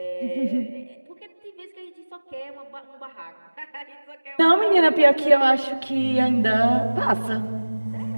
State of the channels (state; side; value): inverted; both; correlation -1.00